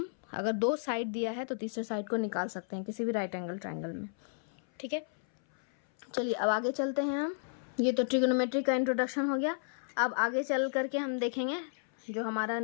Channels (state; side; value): silent; right; 56 dB below the other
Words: अगर 2 साइड दिया है तो तीसरे साइड को निकाल सकते हैं किसी भी राइट एंगल ट्रायंगल में। ठीक है, चलिए अब आगे चलते हैं हम। ये तो ट्रिग्नोमेट्री का इंट्रोडक्शन हो गया। अब आगे चल करके हम देखेंगे जो हमारा